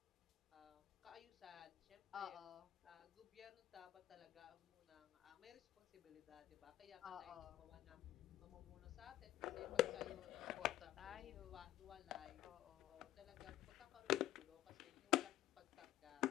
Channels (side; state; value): right; quieter; 14.5 dB